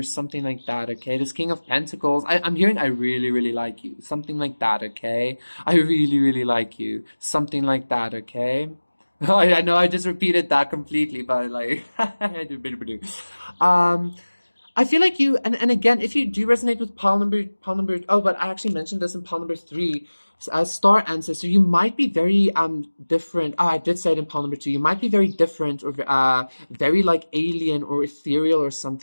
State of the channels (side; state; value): both; inverted; correlation -1.00